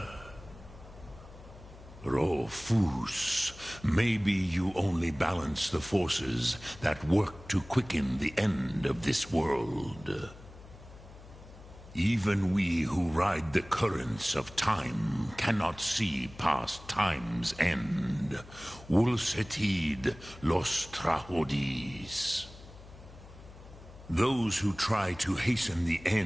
Rofus, maybe you only balance the forces that work to quicken the end of this world. Even we who ride the currents of time cannot see past time's end. Wulsetid los trahodis. Those who try to hasten the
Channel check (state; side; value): noise; left; hum, 18 dB below the sound